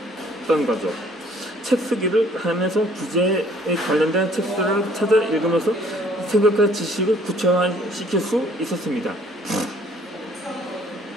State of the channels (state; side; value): normal; both; correlation 0.58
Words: 거죠. 책 쓰기를 하면서 부재에 관련된 책들을 찾아 읽으면서 생각과 지식을 구체화시킬 수 있었습니다.